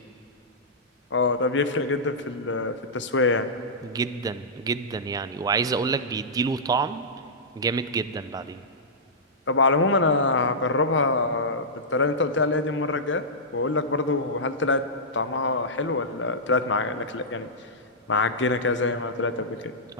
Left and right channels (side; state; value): both; normal; correlation -0.14